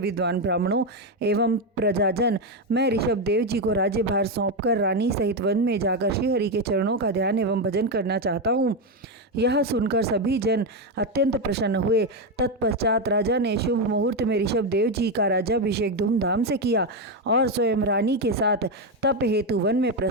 ब्राह्मणों एवं प्रजाजन, मैं ऋषभ देव जी को राज्यभार सौंपकर रानी सहित वन में जाकर श्रीहरि के चरणों का ध्यान एवं भजन करना चाहता हूँ। यह सुनकर सभी जन अत्यंत प्रसन्न हुए। तत्पश्चात राजा ने शुभ मुहूर्त में ऋषभ देव जी का राज्याभिषेक धूमधाम से किया और स्वयं रानी के साथ तप हेतु वन में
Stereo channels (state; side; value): normal; both; correlation 0.08